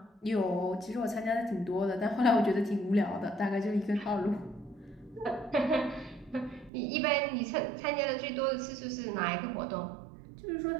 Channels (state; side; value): drops out; left; at 6.7 s